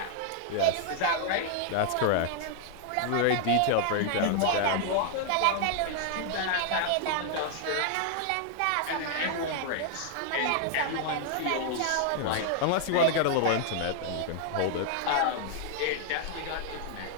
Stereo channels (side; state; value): both; different; correlation 0.00